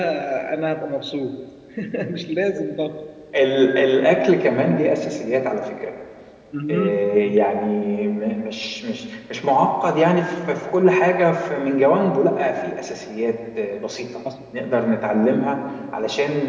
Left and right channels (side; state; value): both; identical; correlation 1.00